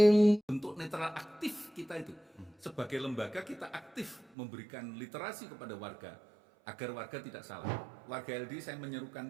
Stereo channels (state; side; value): drops out; left; at 4.4 s